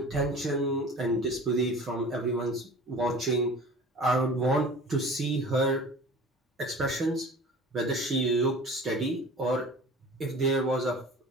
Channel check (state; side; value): normal; both; correlation 0.41